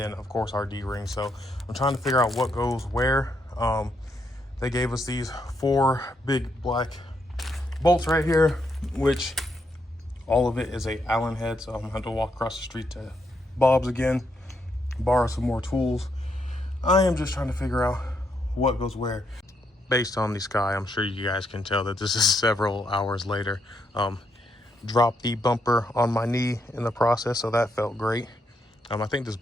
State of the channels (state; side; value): normal; both; correlation 0.78